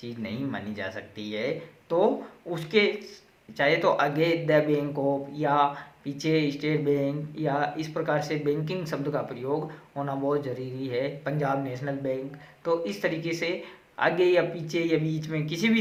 नहीं मानी जा सकती है। तो उसके चाहे तो आगे द बैंक ऑफ या पीछे स्टेट बैंक या इस प्रकार से बैंकिंग शब्द का प्रयोग होना बहुत ज़रूरी है, पंजाब नेशनल बैंक। तो इस तरीके से आगे या पीछे या बीच में किसी भी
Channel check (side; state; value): both; identical; correlation 1.00